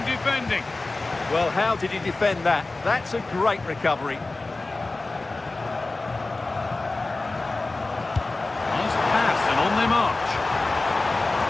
defending. Well, how did he defend that? That's a great recovery. Nice pass and on they march.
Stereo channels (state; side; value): quieter; right; 3.2 dB